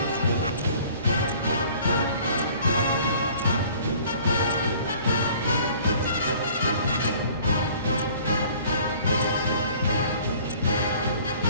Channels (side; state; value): both; inverted; correlation -0.52